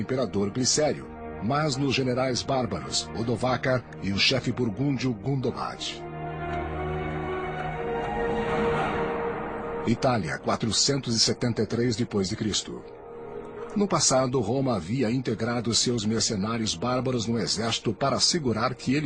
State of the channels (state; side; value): identical; both; correlation 1.00